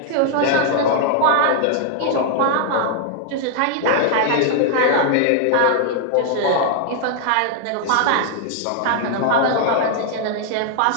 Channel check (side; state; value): both; different; correlation -0.01